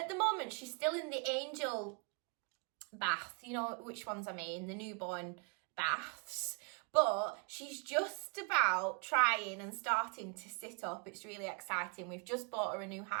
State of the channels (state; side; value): quieter; left; 35.1 dB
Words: the moment she's still in the angel bath, you know which ones I mean, the newborn baths, but she's just about trying and starting to sit up. It's really exciting. We've just bought her a new